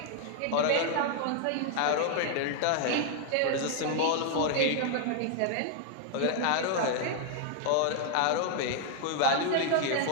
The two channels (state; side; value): different; both; correlation 0.00